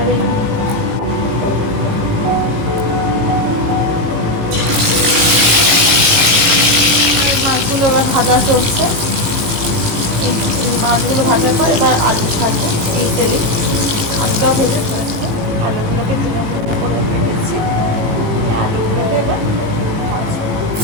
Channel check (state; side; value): late; left; 18 ms